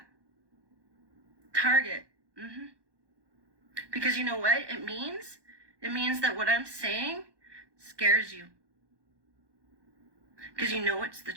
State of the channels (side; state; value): left; late; 1.2 ms